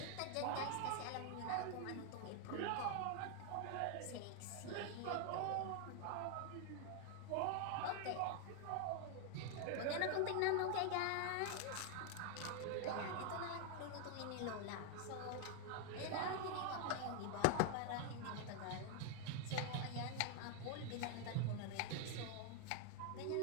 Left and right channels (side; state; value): both; different; correlation 0.00